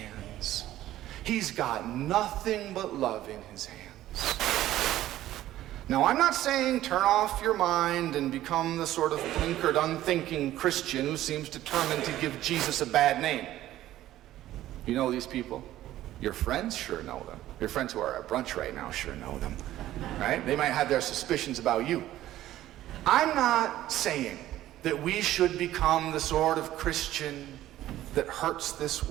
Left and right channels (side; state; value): left; quieter; 14.0 dB